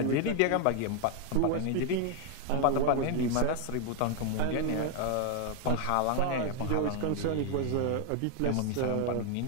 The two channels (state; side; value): different; both; correlation 0.01